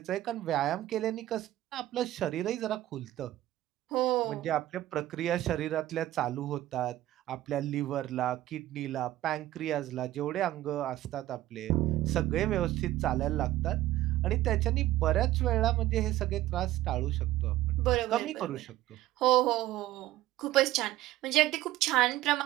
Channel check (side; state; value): left; quieter; 15.0 dB